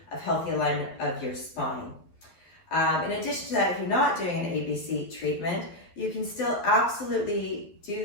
alignment of your spine. In addition to that, if you're not doing an ABC treatment, you can still absolutely do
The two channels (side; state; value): right; late; 12 ms